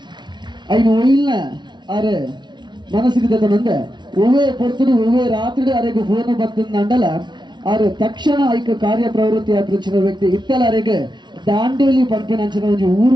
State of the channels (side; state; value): left; late; 0.21 ms